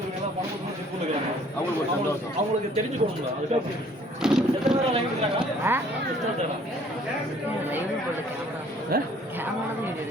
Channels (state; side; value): normal; both; correlation 0.57